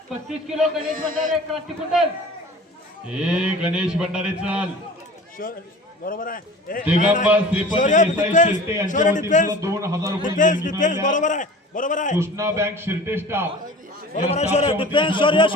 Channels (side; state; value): both; normal; correlation 0.41